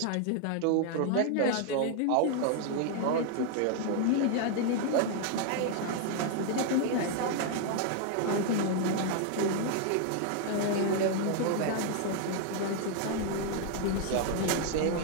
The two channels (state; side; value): different; both; correlation 0.00